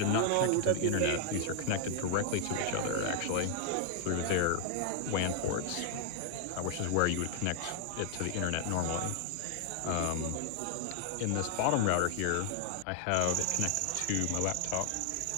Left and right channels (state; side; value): different; both; correlation 0.00